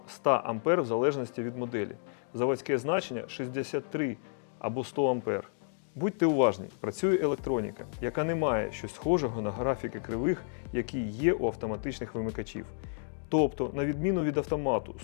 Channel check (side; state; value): right; silent; digital silence